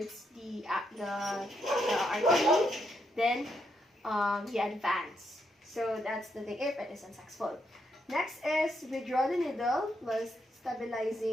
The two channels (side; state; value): both; normal; correlation 0.79